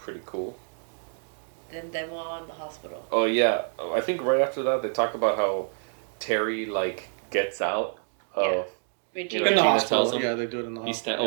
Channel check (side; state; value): left; silent; digital silence